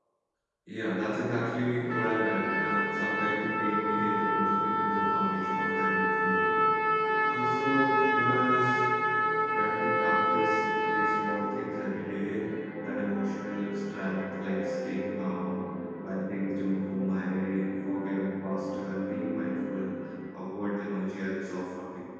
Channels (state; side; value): identical; both; correlation 1.00